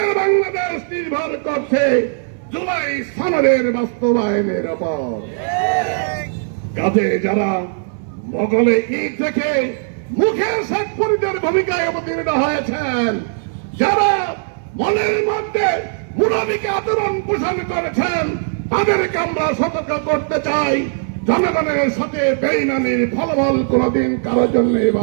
বাংলাদেশ নির্ভর করছে জুলাই সনদের বাস্তবায়নের উপর। কাজে যারা মোগলে ঈদ থেকে মুখে শেখ ফরিদের ভূমিকায় অবতীর্ণ হয়েছেন, যারা মনের মধ্যে মুনাফিকে আচরণ পোষণ করেছেন, তাদেরকে আমরা সতর্ক করতে চাই, জনগণের সাথে বেইমানির ফলাফল কোনদিন কারোর জন্য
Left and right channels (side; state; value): left; silent; 61 dB below the other